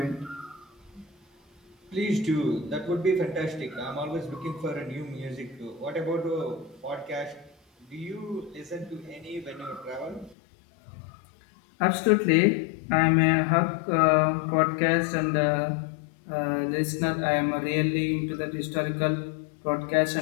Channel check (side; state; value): right; drops out; at 10.4 s